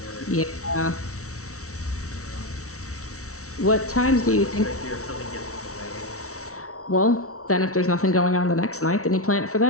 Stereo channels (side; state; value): right; late; 0.64 ms